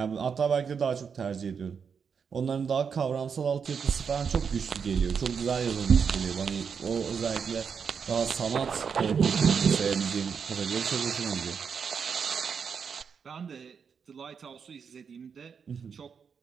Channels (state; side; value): quieter; left; 6.4 dB